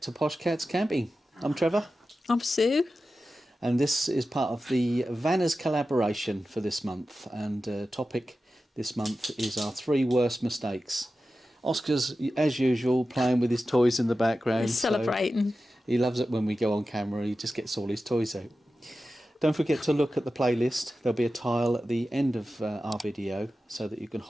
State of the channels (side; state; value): both; normal; correlation 0.93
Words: to Posh Cats Camping. I'm Trevor. I'm Sue. And this is part of the Vanners collaboration for this month. And topic this month is our 3 worst mistakes. Oscar's, as usual, playing with his toys in the background. He's celebrating. So he loves it when we go on camera. He just gets all his toys out. Don't forget to look at the playlist. There'll be a tile at the end of our video so that you can